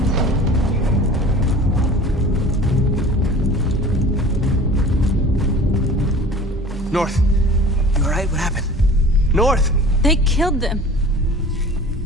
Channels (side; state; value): both; normal; correlation 0.42